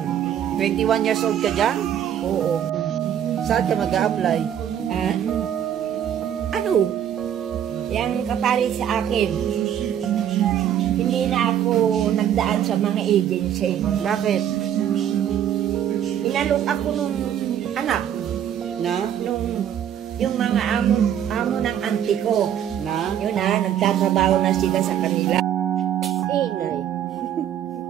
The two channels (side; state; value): left; quieter; 9.9 dB